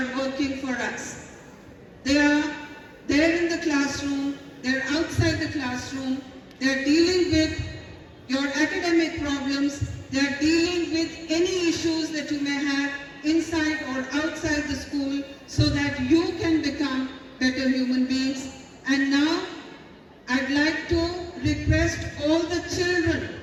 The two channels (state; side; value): identical; both; correlation 1.00